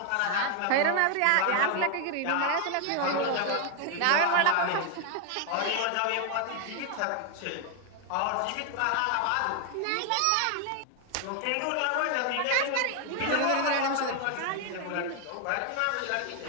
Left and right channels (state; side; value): different; both; correlation 0.00